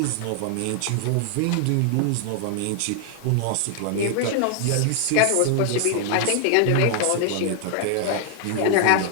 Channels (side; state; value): both; different; correlation 0.00